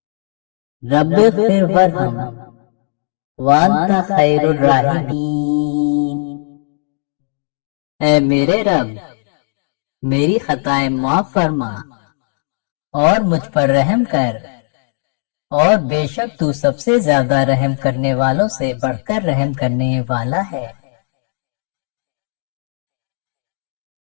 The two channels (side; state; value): right; silent; digital silence